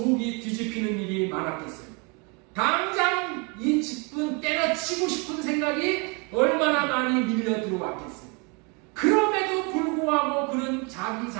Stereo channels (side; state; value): left; quieter; 31.9 dB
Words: 뒤집히는 일이 많았겠어요. 당장 이 직분 때려치고 싶은 생각이 얼마나 많이 밀려 들어왔겠어요. 그럼에도 불구하고 그는 자기